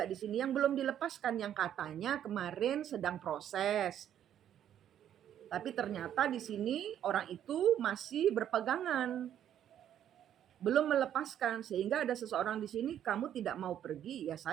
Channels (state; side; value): quieter; left; 10.3 dB